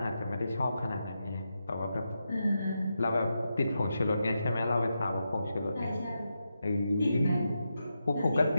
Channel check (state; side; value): inverted; both; correlation -0.87